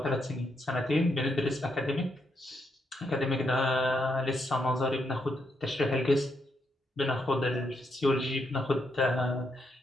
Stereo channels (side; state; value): both; normal; correlation 0.79